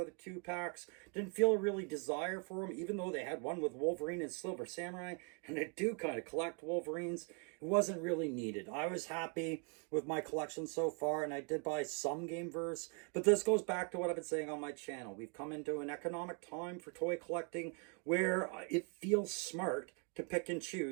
2-packs. Didn't feel a really desire for them, even though they had one with Wolverine and Silver Samurai. And I do kind of collect Wolverines. It wasn't really needed. I was happy with my collection so far, and I did buy some Gameverse. But this goes back to what I've been saying on my channel. We've come into an economic time for toy collecting where it feels smart to pick and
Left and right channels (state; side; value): quieter; left; 37.7 dB